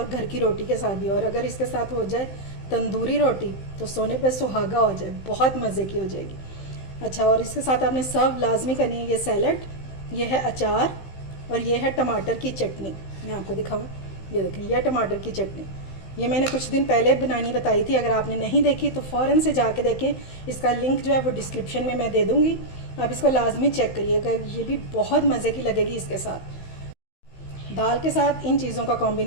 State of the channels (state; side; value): late; right; 15 ms